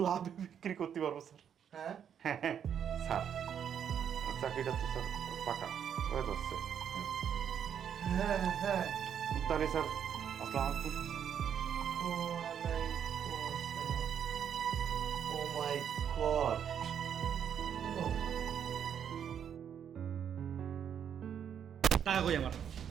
লাভে বিক্রি করতে পারবো স্যার। হ্যাঁ হ্যাঁ হ্যাঁ স্যার, চাকরিটা তো স্যার পাকা হয়ে যাচ্ছে। হ্যাঁ হ্যাঁ। তাহলে স্যার আসসালামু আলাইকুম। ও মাই গড, টাকা কই আমার?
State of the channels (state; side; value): quieter; left; 8.5 dB